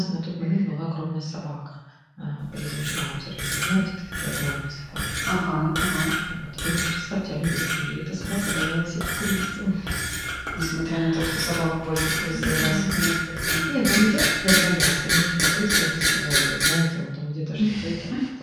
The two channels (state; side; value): identical; both; correlation 1.00